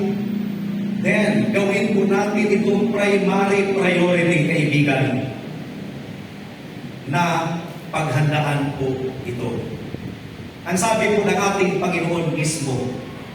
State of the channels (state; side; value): identical; both; correlation 1.00